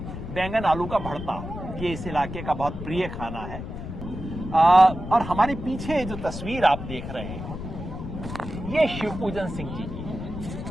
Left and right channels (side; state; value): left; noise; rumble, 8 dB below the sound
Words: बैंगन आलू का भरता, ये इस इलाके का बहुत प्रिय खाना है। और हमारे पीछे जो तस्वीर आप देख रहे हैं ये शिवपूजन सिंह जी की